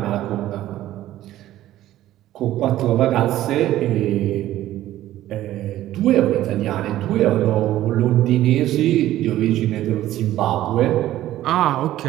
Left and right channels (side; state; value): left; quieter; 14.0 dB